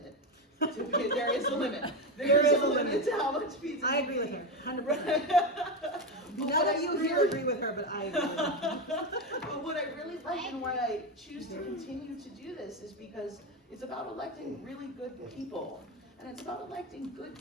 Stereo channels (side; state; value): both; normal; correlation 0.14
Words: There is a limit. There is a limit to how much pizza. I agree with her, 100%. But None what of I you here really- agree with her, but I agree with her. But what I really like and why I choose to continue to do this is because it's about electing really good people. And it's about electing good